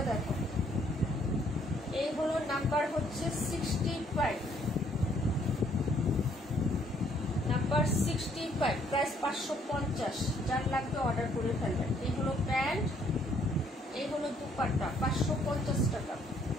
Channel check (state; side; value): normal; both; correlation 0.66